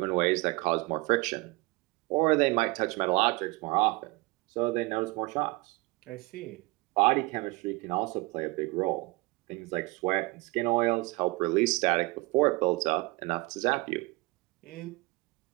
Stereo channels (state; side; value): quieter; left; 24.2 dB